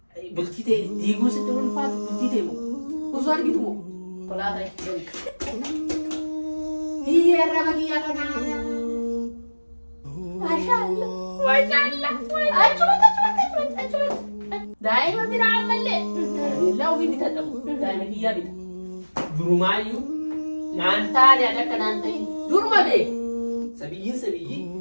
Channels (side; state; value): both; inverted; correlation -1.00